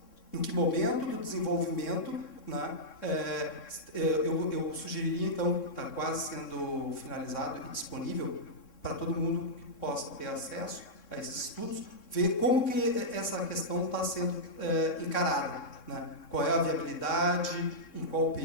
Em que momento do desenvolvimento, né, eu sugeriria, então, está quase sendo finalizado e disponível para todo mundo que possa ter acesso a esses estudos, ver como que essa questão está sendo encarada, né? Qual é a viabilidade, em qual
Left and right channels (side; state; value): right; late; 3.6 ms